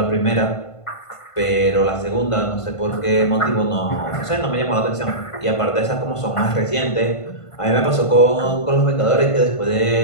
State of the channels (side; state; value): right; late; 1.5 ms